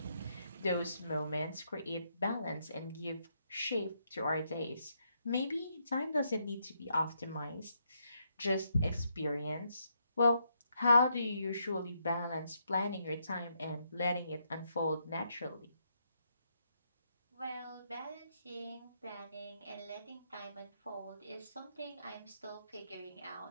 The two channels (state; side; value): inverted; both; correlation -0.78